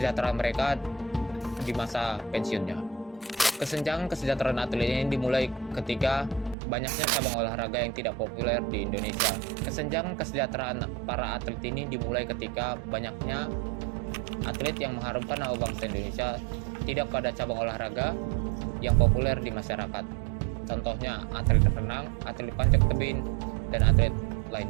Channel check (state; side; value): drops out; left; at 6.6 s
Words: mereka di masa pensiunnya. Kesenjangan kesejahteraan atlet ini dimulai ketika banyaknya cabang olahraga yang tidak populer di Indonesia. Kesenjangan kesejahteraan para atlet ini dimulai ketika banyaknya atlet yang mengharumkan nama bangsa Indonesia tidak pada cabang olahraga yang populer di masyarakat. Contohnya atlet renang, atlet panjat tebing, dan atlet